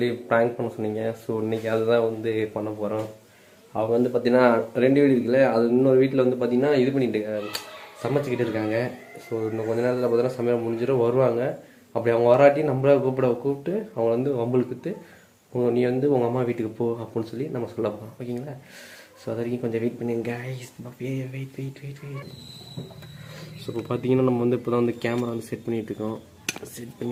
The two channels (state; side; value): identical; both; correlation 1.00